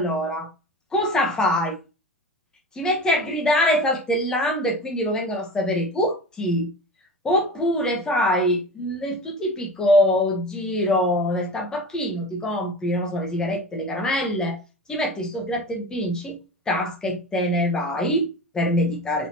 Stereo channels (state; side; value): normal; both; correlation 0.32